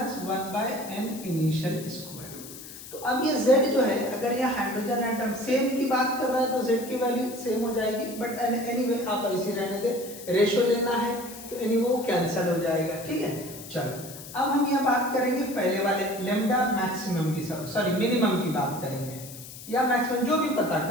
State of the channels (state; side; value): noise; left; hiss, 14 dB below the sound